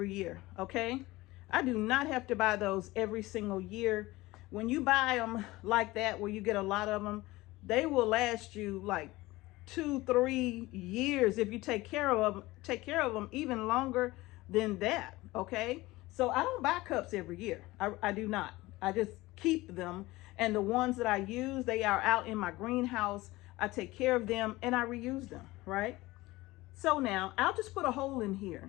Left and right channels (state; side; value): quieter; right; 19.6 dB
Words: year, okay? I do not have to buy those every single year. When you buy them like that, where you get a lot of them, they will last you like 2-3 years if you take care of them even longer than that, okay? So I don't buy cups every year. I do not. I just keep them, and the ones that I use, they are out in my greenhouse. I take care of them and I reuse them, right? So now I'll just put a hole in